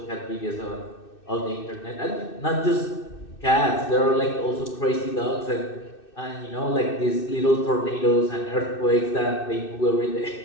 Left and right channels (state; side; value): late; right; 2.6 ms